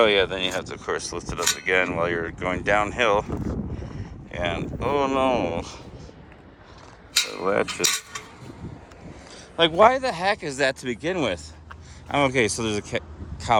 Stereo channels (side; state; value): both; identical; correlation 1.00